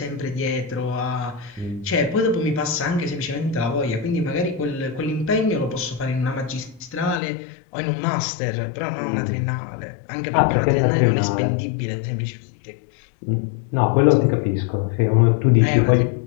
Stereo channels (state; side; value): drops out; right; at 7.2 s